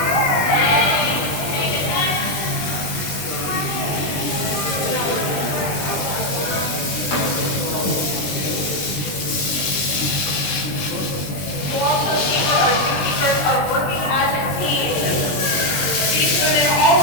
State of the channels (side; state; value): right; late; 20 ms